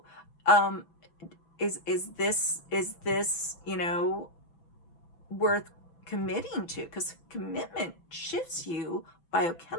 is this, you know, worth committing to? Because commitment shifts you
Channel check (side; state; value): right; late; 6.1 ms